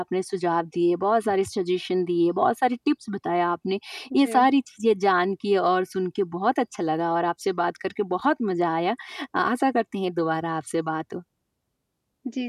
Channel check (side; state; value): both; identical; correlation 1.00